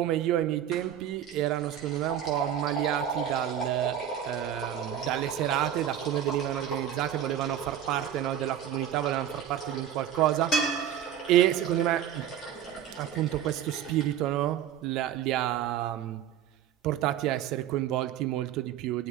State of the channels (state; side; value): quieter; left; 10.2 dB